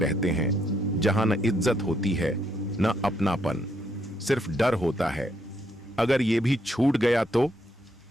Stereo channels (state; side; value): normal; both; correlation 0.75